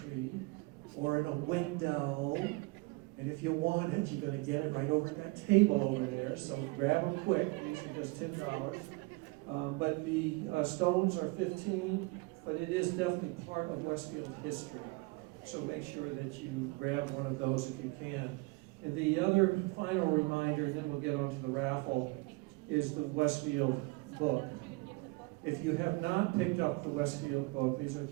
or in a window. And if you want it, you're going to get it right over at that table over there. So grab them quick. These are just $10. But the stones are $15. But it is definitely part of Westfield history. So make sure that you grab one of those if you can. And the other final reminder, and then we'll get on to the raffle, is the Westfield Book. If you have not picked up the Westfield Book, these are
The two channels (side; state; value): left; quieter; 25.5 dB